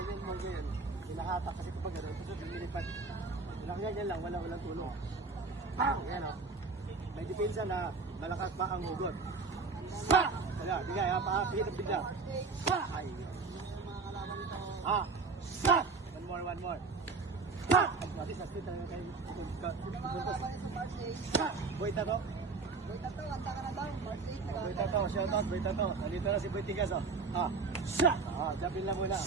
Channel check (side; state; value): left; quieter; 4.4 dB